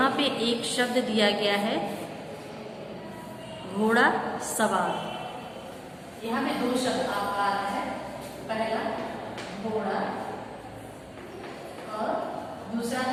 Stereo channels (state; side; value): identical; both; correlation 1.00